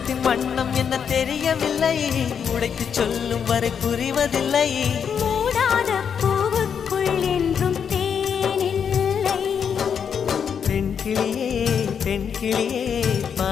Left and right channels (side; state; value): right; quieter; 7.3 dB